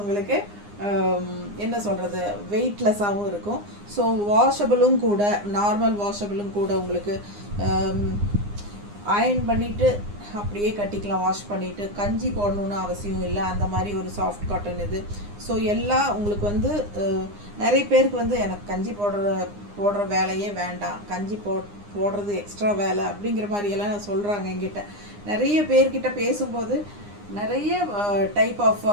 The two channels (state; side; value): late; left; 9.8 ms